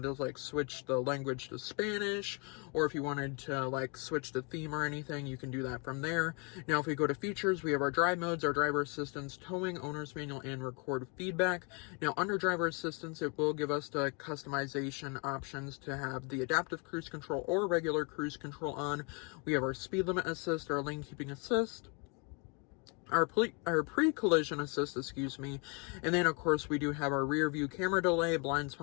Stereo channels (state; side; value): quieter; right; 33.7 dB